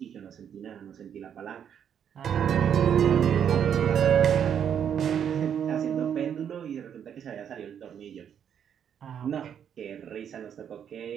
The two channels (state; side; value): quieter; left; 8.6 dB